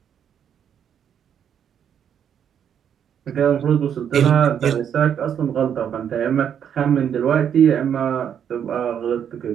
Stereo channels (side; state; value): left; quieter; 8.7 dB